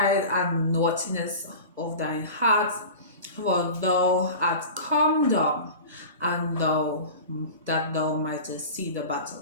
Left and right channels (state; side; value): inverted; both; correlation -0.34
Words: and naughtiness of thine heart, for thou art come down, and that thou mightest see the